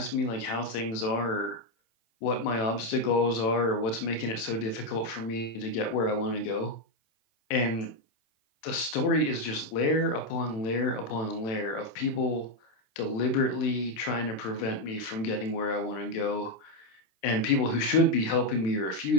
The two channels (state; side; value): late; right; 27 ms